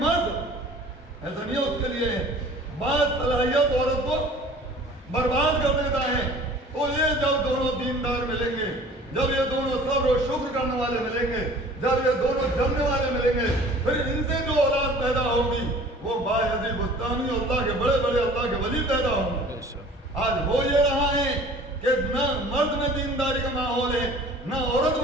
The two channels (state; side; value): normal; both; correlation 0.47